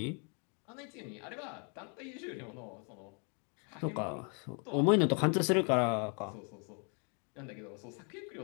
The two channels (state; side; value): quieter; right; 37.4 dB